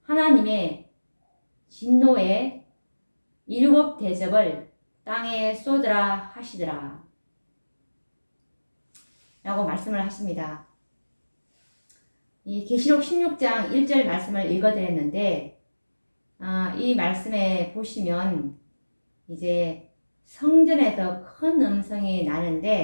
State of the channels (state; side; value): inverted; both; correlation -1.00